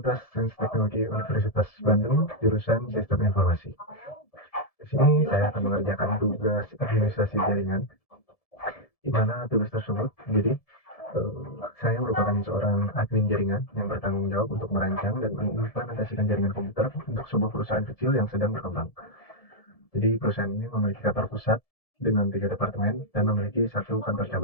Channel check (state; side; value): late; right; 1.7 ms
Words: Sains Teknologi Universitas Bandung, jurusan Sistem Informasi. Di sini saya akan mengerjakan tugas administrasi jaringan, di mana tugas tersebut jadi saya merupakan seorang admin jaringan yang bertanggung jawab untuk merancang dan mengimplementasikan jaringan komputer untuk sebuah perusahaan kecil yang sedang berkembang. Jadi perusahaan ini memiliki kantor pusat dengan 3 departemen dan memiliki 1 kantor